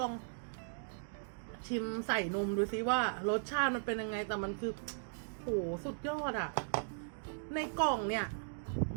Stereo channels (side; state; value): left; silent; digital silence